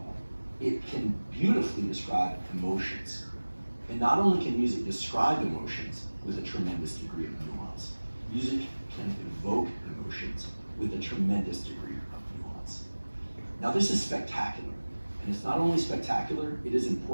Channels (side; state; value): both; inverted; correlation -1.00